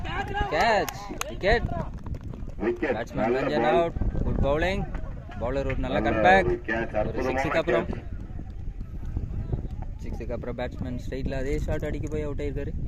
wicket batsman Ranjan out good bowling bowler ஒரு நல்ல கட் பேக் ஒரு சிக்ஸுக்கு அப்புறம் பேட்ஸ்மேன் ஸ்ட்ரைட்ல அதே ஷாட் அடிக்க போய் அவுட் ஆயிருக்காரு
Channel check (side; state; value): both; identical; correlation 1.00